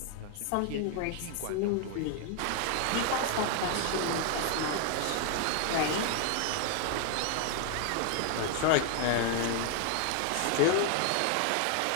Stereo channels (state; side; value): different; both; correlation 0.00